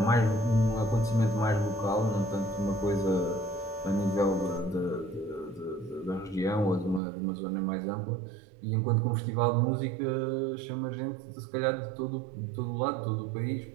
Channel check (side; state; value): left; drops out; at 7.0 s